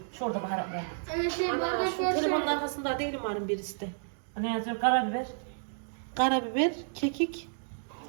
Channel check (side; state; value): left; silent; digital silence